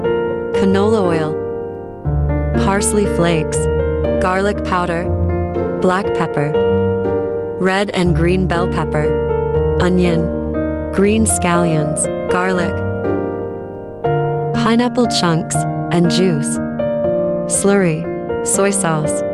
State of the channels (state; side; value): identical; both; correlation 1.00